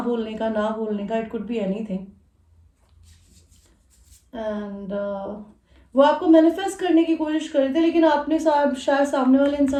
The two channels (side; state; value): both; identical; correlation 1.00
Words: बोलने का, ना बोलने का, it could be anything. And वो आपको मैनिफेस्ट करने की कोशिश कर रहे थे, लेकिन आपने शायद सामने वाले